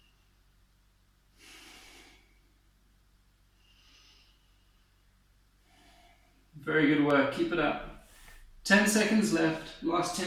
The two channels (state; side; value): identical; both; correlation 1.00